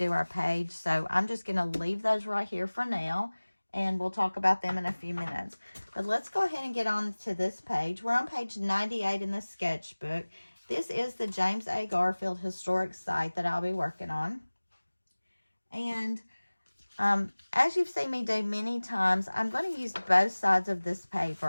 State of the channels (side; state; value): both; inverted; correlation -1.00